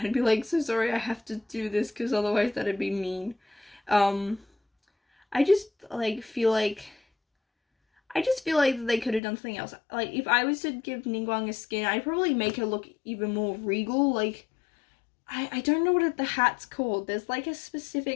I'd be like, so sorry, I have to do this, because otherwise that'd be mean. I just, like, feel like they could have done something else. Like, if I was to give Ningguang a skin, I'd probably make her look even more regal. Like, I don't know what the hat's called. There's, like, a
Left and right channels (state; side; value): drops out; right; at 9.2 s